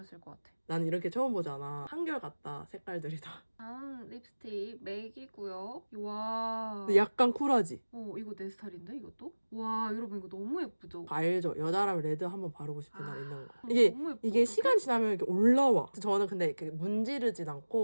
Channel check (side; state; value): both; inverted; correlation -1.00